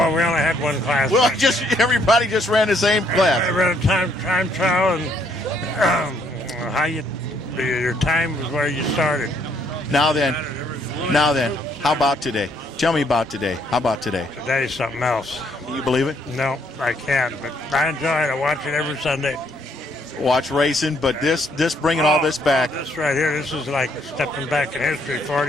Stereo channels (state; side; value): normal; both; correlation 0.69